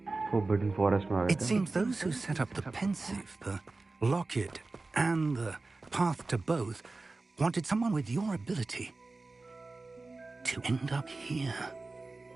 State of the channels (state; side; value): quieter; left; 3.5 dB